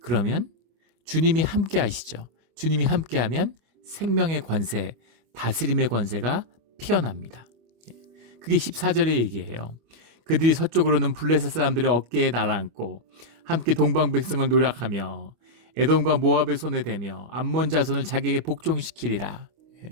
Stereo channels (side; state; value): left; late; 25 ms